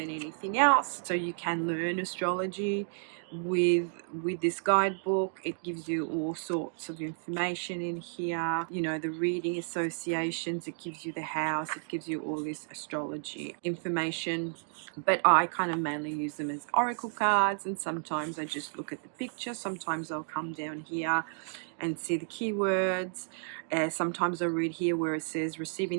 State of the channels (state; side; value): silent; left; digital silence